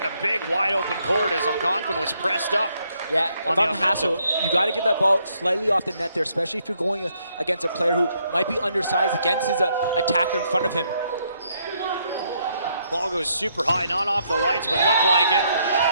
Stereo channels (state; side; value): inverted; both; correlation -0.73